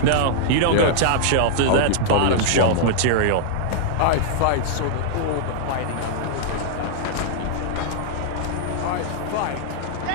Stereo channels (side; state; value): both; different; correlation -0.01